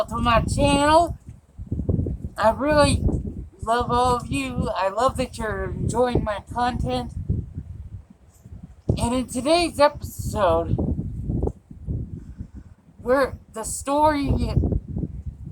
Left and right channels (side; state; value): both; identical; correlation 1.00